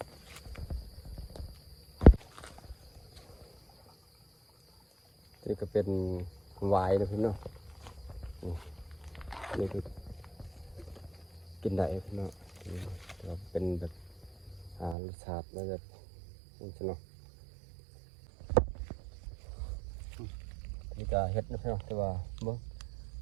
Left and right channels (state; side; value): drops out; left; at 15.0 s